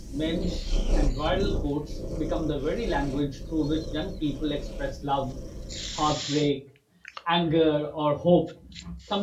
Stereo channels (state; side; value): identical; both; correlation 1.00